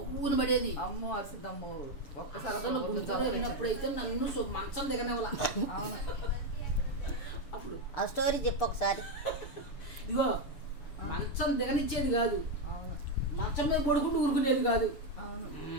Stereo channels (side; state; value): right; late; 6.7 ms